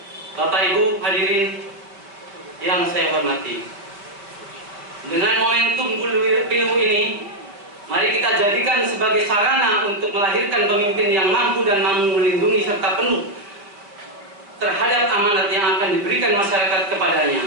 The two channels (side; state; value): left; late; 5.0 ms